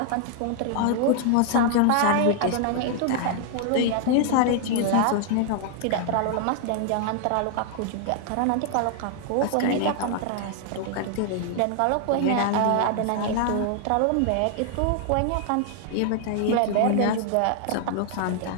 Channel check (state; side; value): different; both; correlation 0.00